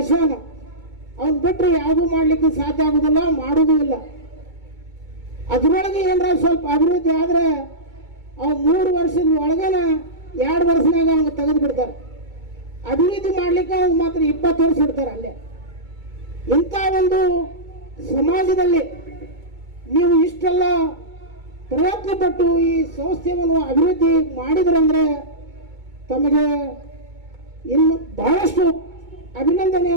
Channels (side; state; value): left; late; 2.2 ms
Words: ಅವನ್ ಬಿಟ್ಟರೆ ಯಾವುದೂ ಮಾಡಲಿಕ್ಕೆ ಸಾಧ್ಯ ಆಗುದಿಲ್ಲ, ಮಾಡುವುದೂ ಇಲ್ಲ. ಅದರೊಳಗೆ ಏನಾರ ಸ್ವಲ್ಪ ಅಭಿವೃದ್ಧಿ ಆದರೆ ಅವು 3 ವರ್ಷದ ಒಳಗನ 2 ವರ್ಷನಾಗ ಅವ್ನು ತೆಗೆದು ಬಿಡ್ತಾರೆ. ಅಭಿವೃದ್ಧಿ ಮಾಡ್ಲಿಕ್ಕೆ ಅವ್ನು ಮಾತ್ರ 20 ವರ್ಷ ಇಡ್ತಾರೆ ಅಲ್ಲೇ. ಇಂಥ ಒಂದು ಸಮಾಜದಲ್ಲಿ ನೀವು ಇಷ್ಟೆಲ್ಲ ಪ್ರಯತ್ನ ಪಟ್ಟು ಈ ಸಂಸ್ಥೆಯನ್ನು ಅಭಿವೃದ್ಧಿ ಮಾಡಿದ್ರಂದ್ರೆ ತಮಗೆ ಇನ್ನು ಬಹಳಷ್ಟು